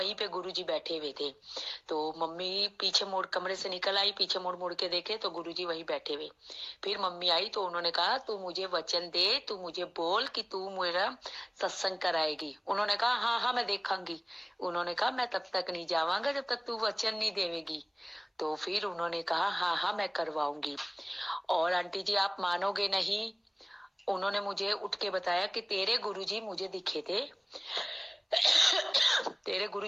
पे गुरुजी बैठे हुए थे। तो मम्मी पीछे मुड़ कमरे से निकल आई, पीछे मुड़ के देखे तो गुरुजी वहीं बैठे हुए। फिर मम्मी आई तो उन्होंने कहा तू मुझे वचन दे, तू मुझे बोल कि तू मेरा सत्संग कराएगी। उन्होंने कहा हाँ मैं देखांगी। उन्होंने कहा मैं तब तक नहीं जावांगा जब तक तू वचन नहीं देवेगी। तो फिर उन्होंने कहा हाँ मैं करवाऊंगी। और आंटी जी आप मानोगे नहीं, उन्होंने मुझे उठ के बताया कि तेरे गुरुजी मुझे दिखे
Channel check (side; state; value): both; identical; correlation 1.00